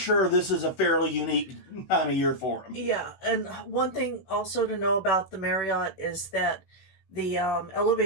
this is a fairly unique time of year for them. Yeah, and one thing also to know about the Marriott is that the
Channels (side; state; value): right; late; 16 ms